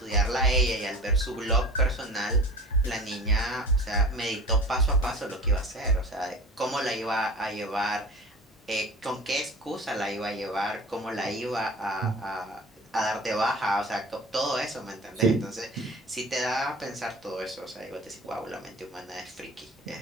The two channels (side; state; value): both; normal; correlation 0.39